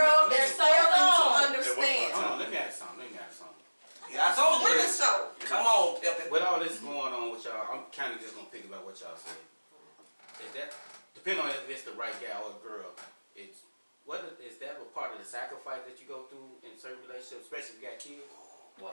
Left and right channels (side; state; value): both; inverted; correlation -1.00